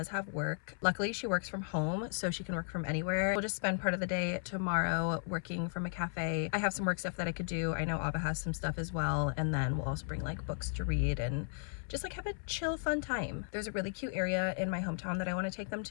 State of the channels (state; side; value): silent; right; 54 dB below the other